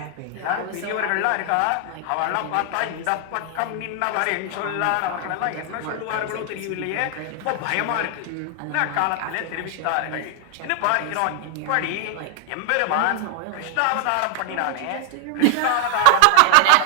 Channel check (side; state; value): both; different; correlation 0.00